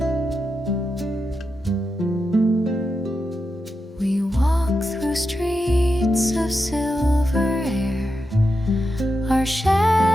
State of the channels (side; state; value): both; normal; correlation 0.88